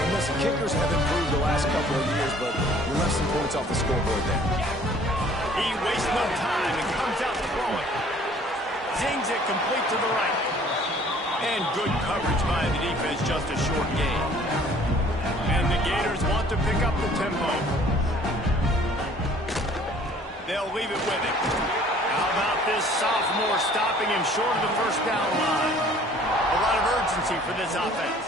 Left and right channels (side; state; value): both; normal; correlation 0.54